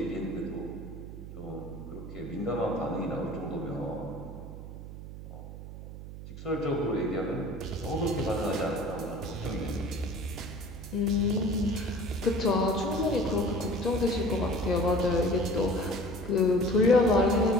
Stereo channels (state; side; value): noise; right; hum, 11 dB below the sound